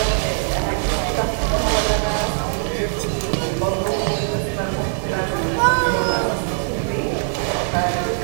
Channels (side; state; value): left; silent; 65 dB below the other